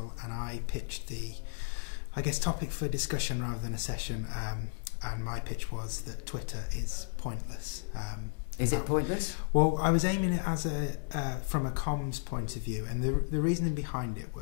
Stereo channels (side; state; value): right; silent; 56 dB below the other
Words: and I pitched the, topic for discussion rather than a session. And my pitch was that Twitter is pointless. Is it pointless? Well, I was aiming it as from a comms point of view, and the reasoning behind it